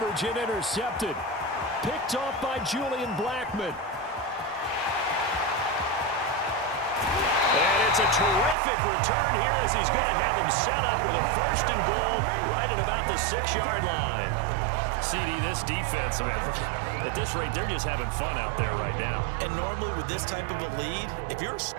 and intercepted. Picked off by Julian Blackmon. And it's a terrific return here as he's going to have them set up with a 1st and goal right at about the 6-yard line. CD, this defense, man, at this rate, they're just having fun out there right now. And normally with this type of a lead, if you're a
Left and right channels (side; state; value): left; drops out; at 8.6 s